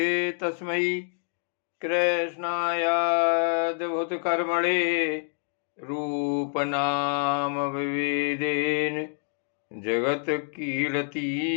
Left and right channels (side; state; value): right; silent; 59 dB below the other